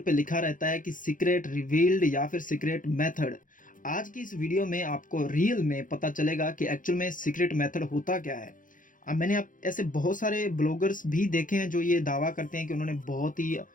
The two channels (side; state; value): right; late; 0.39 ms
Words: लिखा रहता है कि सीक्रेट रिवील्ड या फिर सीक्रेट मेथड। आज की इस वीडियो में आपको रियल में पता चलेगा कि एक्चुअल में सीक्रेट मेथड होता क्या है। मैंने आप ऐसे बहुत सारे ब्लॉगर्स भी देखे हैं जो ये दावा करते हैं कि उन्होंने बहुत ही